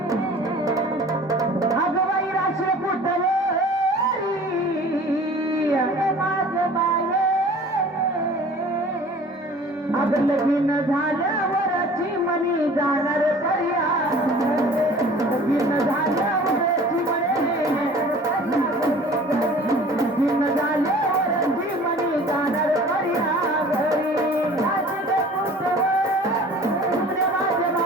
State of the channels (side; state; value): both; normal; correlation 0.46